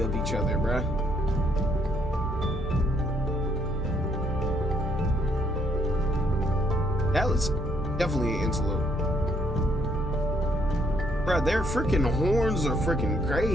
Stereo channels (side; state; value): both; normal; correlation 0.70